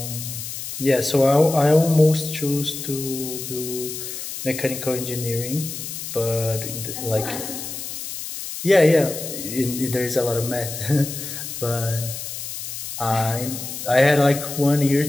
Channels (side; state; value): left; noise; hiss, 8 dB below the sound